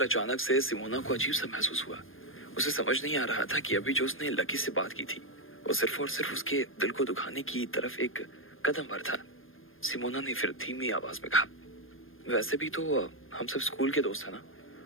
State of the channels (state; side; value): late; right; 0.59 ms